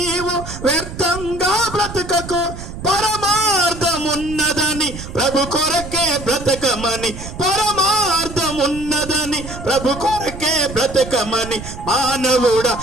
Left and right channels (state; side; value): noise; right; rumble, 11 dB below the sound